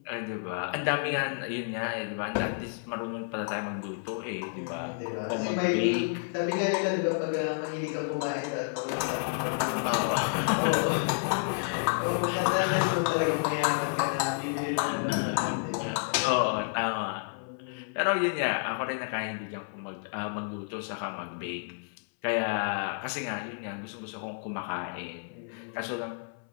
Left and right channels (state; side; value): silent; right; 58 dB below the other